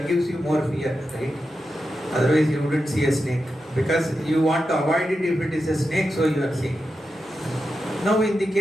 gives you more fear, right? Otherwise, you wouldn't see a snake, because you want to avoid it if it is a snake, so you are seeing. Now, in the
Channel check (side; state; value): both; normal; correlation 0.89